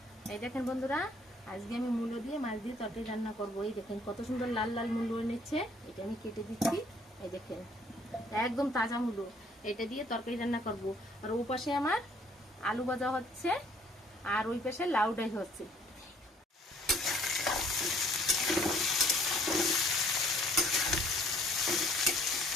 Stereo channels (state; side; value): normal; both; correlation 0.60